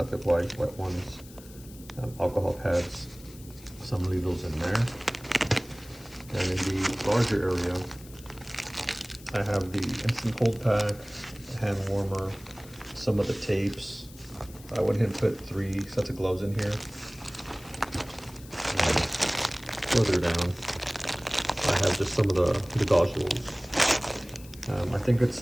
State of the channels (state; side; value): noise; left; hiss, 20 dB below the sound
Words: wipes, Wet Ones, alcohol pads. So I'm gonna leave those in there. And in the larger area, I have the instant cold pack, hand warmer, some of the tapes. I went ahead and put 3 sets of gloves in here. And further down, I have just some of the gauze rolls. I think it's